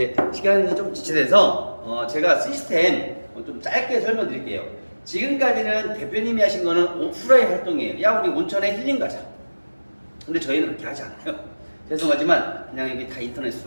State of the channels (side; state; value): both; inverted; correlation -1.00